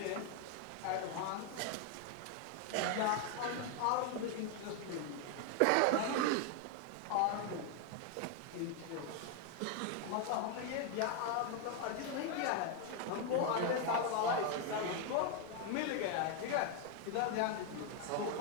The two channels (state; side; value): different; both; correlation 0.01